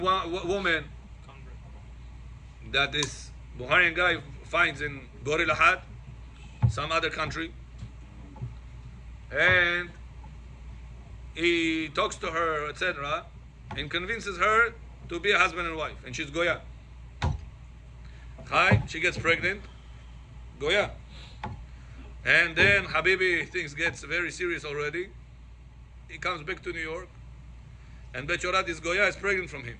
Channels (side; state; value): both; identical; correlation 1.00